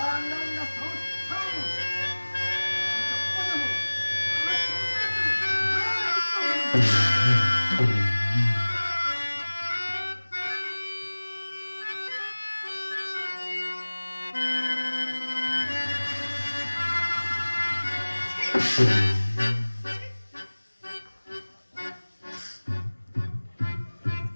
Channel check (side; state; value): both; inverted; correlation -1.00